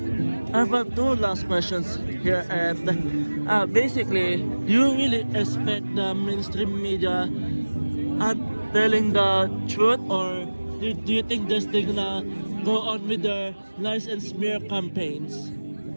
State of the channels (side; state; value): both; inverted; correlation -1.00